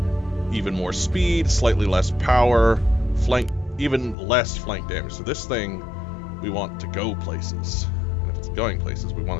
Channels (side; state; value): right; drops out; at 4.2 s